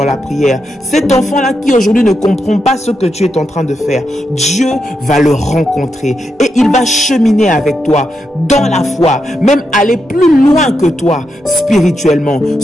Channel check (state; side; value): normal; both; correlation 0.84